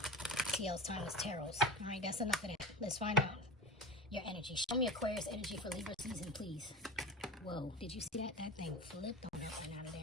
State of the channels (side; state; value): both; normal; correlation 0.30